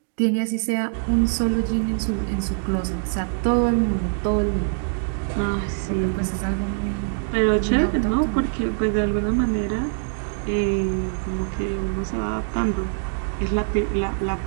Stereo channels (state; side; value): silent; left; digital silence